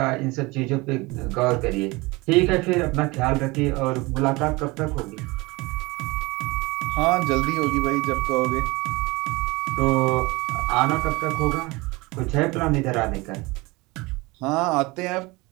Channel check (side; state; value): left; quieter; 23.6 dB